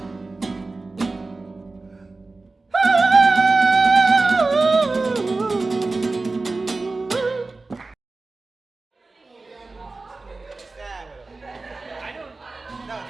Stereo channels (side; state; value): left; quieter; 3.5 dB